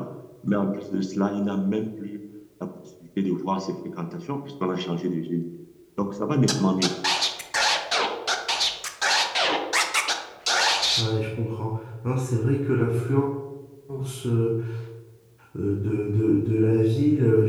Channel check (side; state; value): both; identical; correlation 1.00